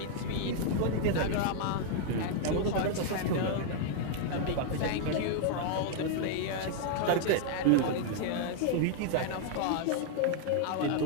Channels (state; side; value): different; both; correlation 0.00